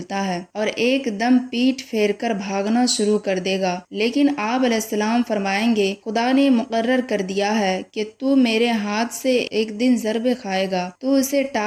ہے، اور ایک دم پیٹھ پھیر کر بھاگنا شروع کر دے گا۔ لیکن آپ علیہ السلام فرمائیں گے، خدا نے مقرر کر دیا ہے کہ تو میرے ہاتھ سے ایک دن ضرب کھائے گا، تو اسے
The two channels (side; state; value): both; identical; correlation 1.00